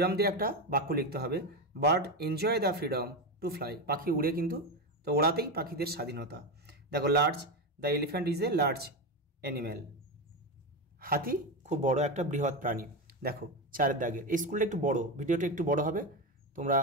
দিয়ে একটা বাক্য লিখতে হবে। Bird enjoy the freedom to fly, পাখি উড়ে কিন্তু, তো ওড়াতেই পাখিদের স্বাধীনতা। দেখো large, the elephant is a large animal, হাতি খুব বড় একটা বৃহৎ প্রাণী। দেখো 4 দাগে, এই স্কুলটা একটু বড়, ভিডিওটা একটু বড় হবে, তোমরা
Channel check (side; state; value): both; normal; correlation 0.15